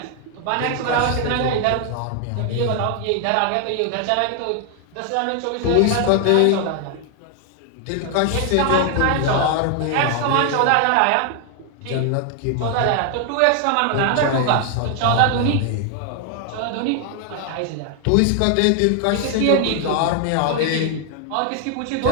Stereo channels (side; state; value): both; different; correlation 0.00